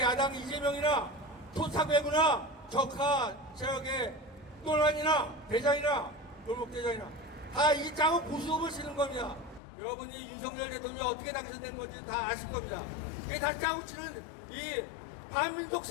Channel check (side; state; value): right; drops out; at 9.6 s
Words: 야당 이재명이나 토착외구나 적화 세력의 논란이나 대장이나 골목대장이나 다 이 짜고 고스톱을 치는 겁니다. 여러분이 윤석열 대통령이 어떻게 당선된 건지 다 아실 겁니다. 이게 다 짜고 치는 이 반민족